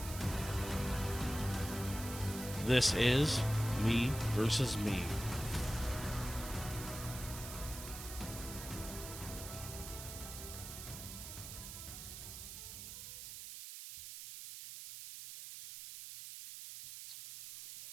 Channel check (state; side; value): noise; right; hiss, 9 dB below the sound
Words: This is Me versus Me.